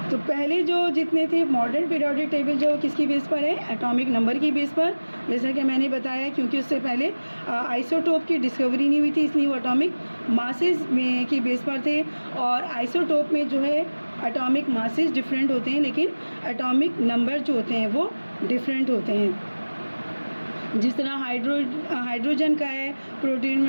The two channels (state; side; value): inverted; both; correlation -1.00